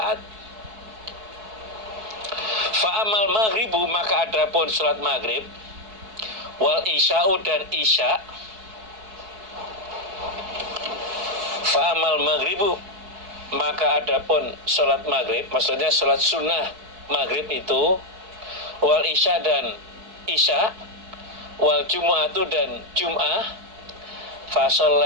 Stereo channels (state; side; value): late; left; 4.6 ms